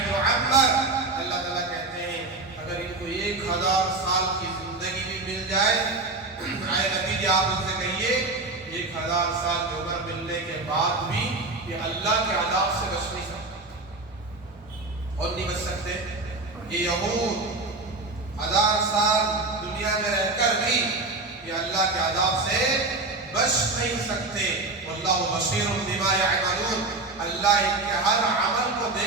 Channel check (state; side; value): quieter; left; 3.2 dB